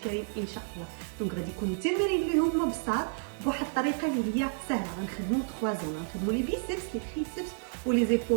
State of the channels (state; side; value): silent; left; 57 dB below the other